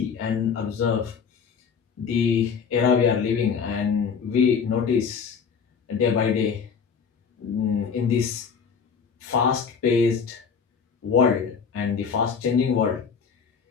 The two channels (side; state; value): right; quieter; 6.3 dB